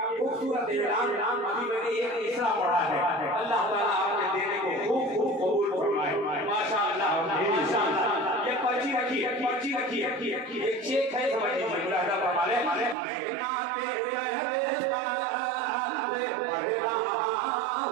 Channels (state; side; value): drops out; left; at 13.0 s